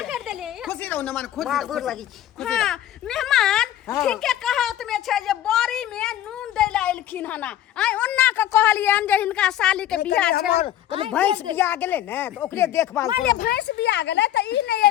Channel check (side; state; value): right; quieter; 12.1 dB